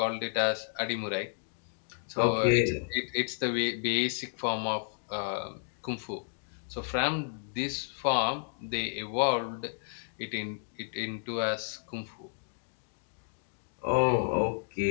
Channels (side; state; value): right; silent; digital silence